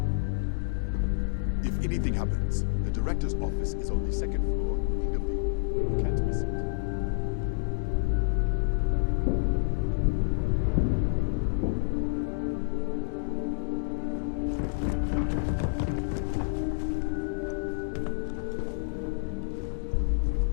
If anything happens, the director's office is on the second floor, in the view. You can't miss it.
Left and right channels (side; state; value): right; silent; digital silence